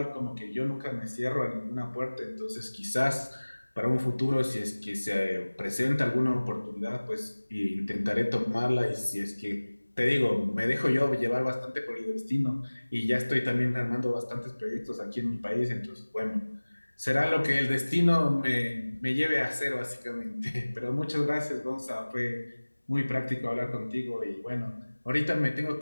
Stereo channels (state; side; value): inverted; both; correlation -1.00